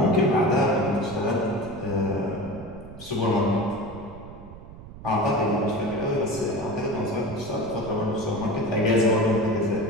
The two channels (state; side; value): noise; right; rumble, 16 dB below the sound